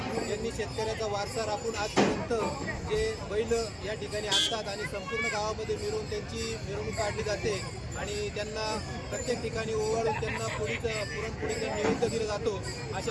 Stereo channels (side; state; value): both; identical; correlation 1.00